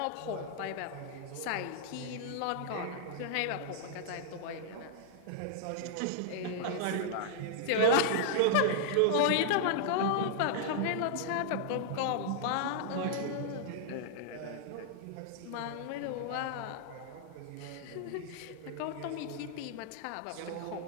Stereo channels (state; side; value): different; both; correlation -0.01